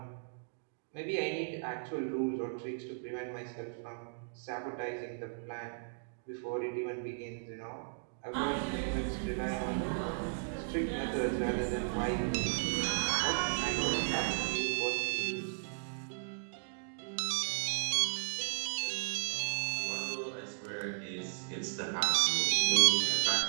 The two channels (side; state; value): left; silent; digital silence